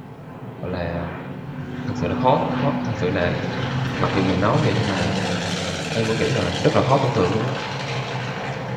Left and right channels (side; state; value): both; identical; correlation 1.00